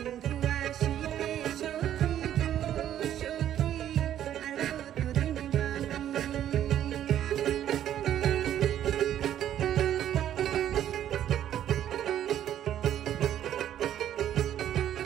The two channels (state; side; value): quieter; left; 11.1 dB